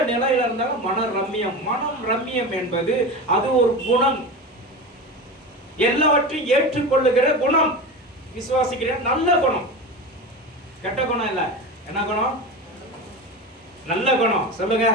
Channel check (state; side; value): normal; both; correlation 0.26